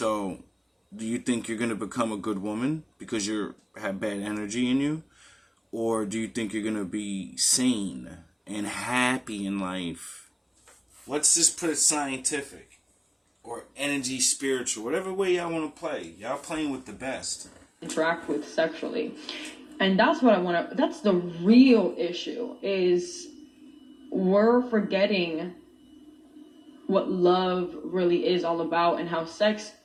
do you think you're going to become a good woman because you have bad energy in you? Or do you think you're going to be sane and happy in life? Let's just put it scientific. Or energy spiritual. Whatever way y'all want to play. Y'all playing with the best. Interact with sexually. And that's what that's the real issue, is we're forgetting what love really is all about, and how sex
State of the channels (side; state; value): both; identical; correlation 1.00